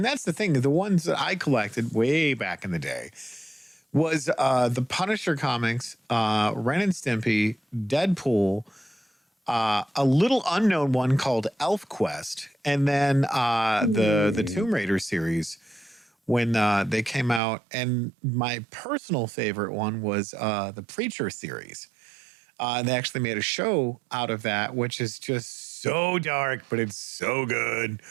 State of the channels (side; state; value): left; drops out; at 17.4 s